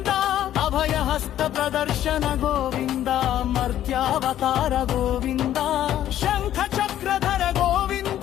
అభయహస్త ప్రదర్శన గోవింద మర్త్యావతార గోవింద శంఖ చక్ర చక్రధర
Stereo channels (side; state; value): right; quieter; 11.9 dB